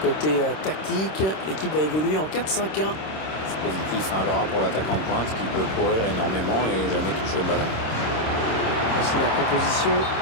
Côté tactique, l'équipe va évoluer en 4-5-1. C'est positif, un Laura pour l'attaquant de pointe qui peut courir énormément et jamais toucher le ballon. Voici la composition.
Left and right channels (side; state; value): right; late; 26 ms